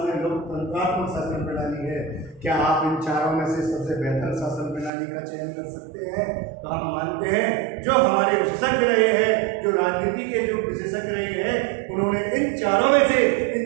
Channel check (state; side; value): drops out; left; at 4.9 s